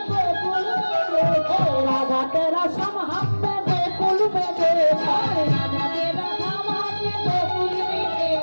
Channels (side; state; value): both; inverted; correlation -1.00